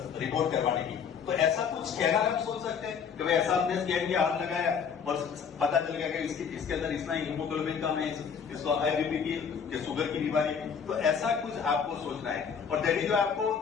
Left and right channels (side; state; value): right; quieter; 6.8 dB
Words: रिपोर्ट करवाने की, तो ऐसा कुछ स्कैनर आप सोच सकते हैं कि भाई ऐसा हमने स्कैन किया, हाथ लगाया और पता चल गया कि इसके अंदर इतना हीमोग्लोबिन कम है, इसको हाई बीपी की शुगर की बीमारी, तो ऐसा कुछ आपको सोचना है। और दैट जो आपको